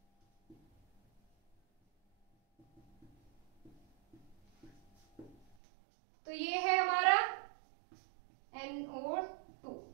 तो ये है हमारा NO2,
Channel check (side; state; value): left; drops out; at 5.6 s